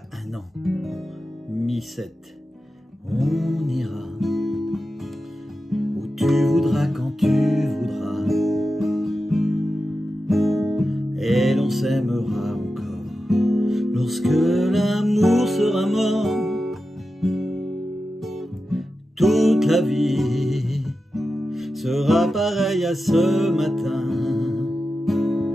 un an, Mi 7. On ira où tu voudras, quand tu voudras, et l'on s'aimera encore lorsque l'amour sera mort. Toute la vie sera pareille à ce matin,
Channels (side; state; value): both; normal; correlation 0.91